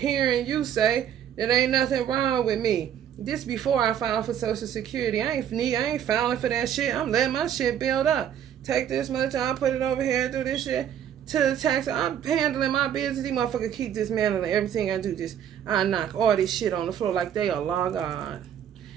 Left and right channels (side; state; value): left; quieter; 9.6 dB